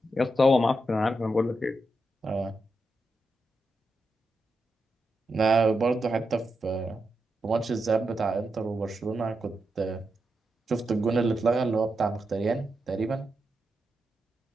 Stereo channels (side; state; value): both; normal; correlation 0.86